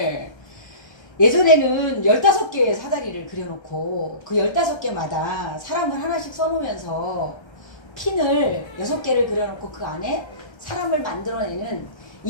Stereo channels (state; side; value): late; right; 1.3 ms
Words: 예전에는 15개의 사다리를 그려놓고 그 15개마다 사람을 하나씩 써놓으면서 핀을 6개를 그려놓고 그 안에 사람을 만들어내는